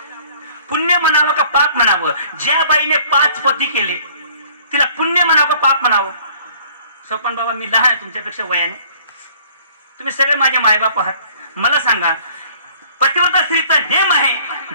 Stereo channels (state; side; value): inverted; both; correlation -0.55